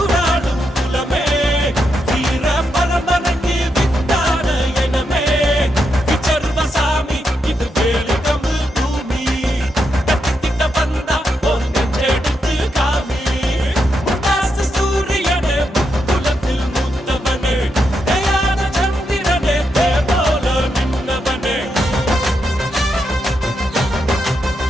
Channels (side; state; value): both; normal; correlation 0.83